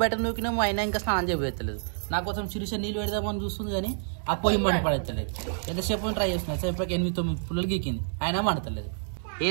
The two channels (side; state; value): left; silent; 59 dB below the other